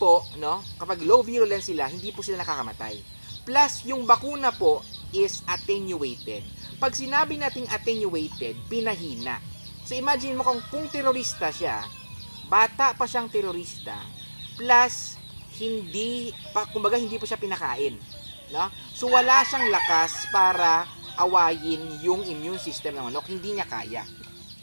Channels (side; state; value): both; inverted; correlation -1.00